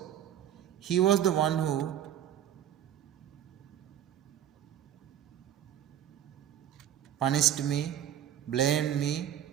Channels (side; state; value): left; quieter; 10.6 dB